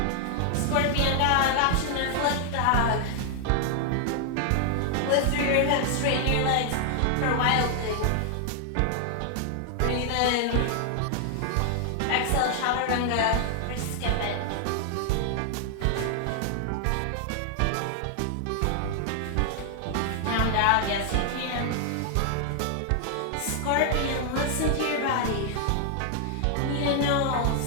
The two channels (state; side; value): different; both; correlation 0.00